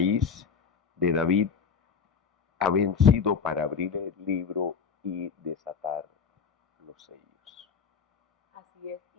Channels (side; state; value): right; quieter; 6.1 dB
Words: de David, ha vencido para abrir el libro y desatar los sellos. Así es,